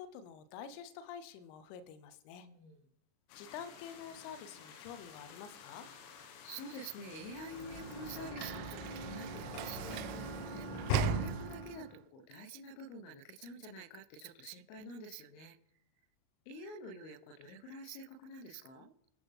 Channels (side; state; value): right; late; 38 ms